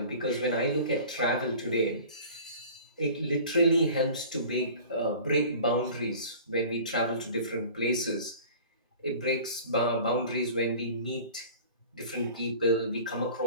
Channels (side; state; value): both; inverted; correlation -0.43